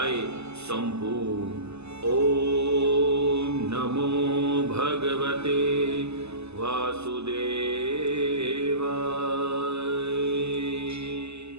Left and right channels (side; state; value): left; late; 0.80 ms